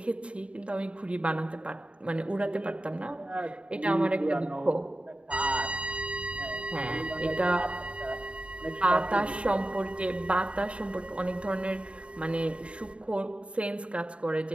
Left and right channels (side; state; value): left; late; 0.060 ms